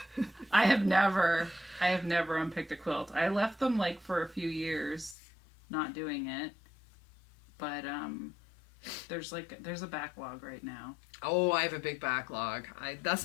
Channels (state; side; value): drops out; right; at 5.2 s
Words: I have never unpicked a quilt. I left them like for a few years, not doing it. But there's a backlog right now. Oh, I have a big backlog.